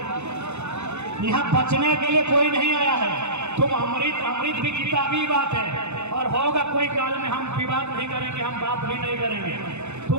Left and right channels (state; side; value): late; left; 0.82 ms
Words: यहाँ बचने के लिए कोई नहीं आया है। तुम अमृत भी किताबी बात है, और होगा कोई काल में हम विवाद नहीं करेंगे, हम बात भी नहीं करेंगे।